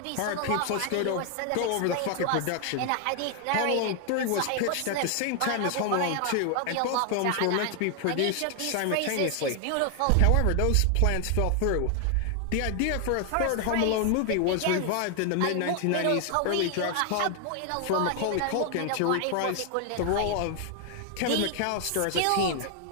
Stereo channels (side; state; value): both; different; correlation 0.00